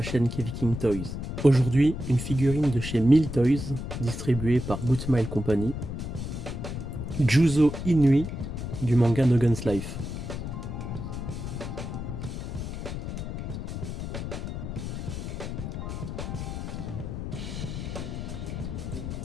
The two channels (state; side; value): noise; left; rumble, 5 dB below the sound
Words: chaîne Keviking Toys. Aujourd'hui, une figurine de chez Mill Toys, distribuée par Good Smile Company. Juzo Inui du manga No Guns Life.